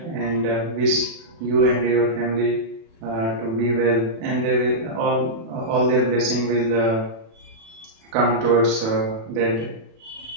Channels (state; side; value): late; left; 36 ms